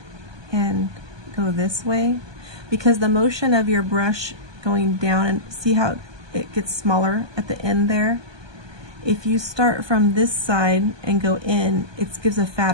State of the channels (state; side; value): late; left; 1.2 ms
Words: and go this way, because the motion of your brush going down, and see how it gets smaller at the end there? If you start from this side and go in, it gives a